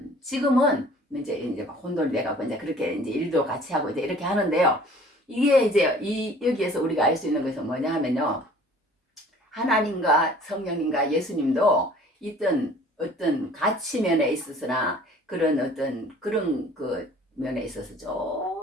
이제 막 혼돈돼가고 이제 그렇게 이제 일도 같이 하고 이제 이렇게 하는데요. 이게 이제 여기에서 우리가 알 수 있는 것은 뭐냐 하면요. 하나님과 성령님과 예수님도 어떤 가치면에 있어서나 그런 그 면에 있어서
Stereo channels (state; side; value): normal; both; correlation 0.51